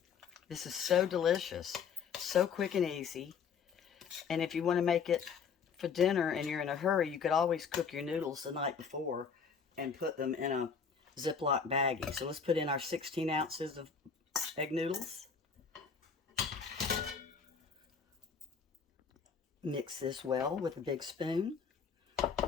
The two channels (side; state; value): right; quieter; 6.2 dB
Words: This is so delicious, so quick and easy. And if you want to make it for dinner and you're in a hurry, you could always cook your noodles the night before and put them in a Ziploc baggie. So let's put in our 16 ounces of egg noodles. Mix this well with a big spoon.